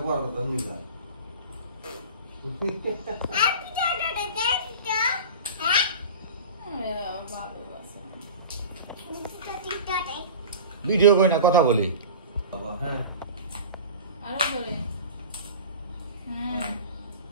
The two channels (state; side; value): inverted; both; correlation -0.35